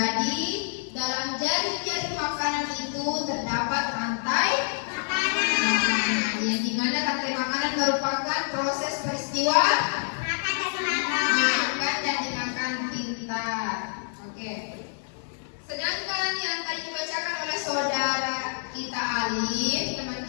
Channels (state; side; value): silent; right; 60 dB below the other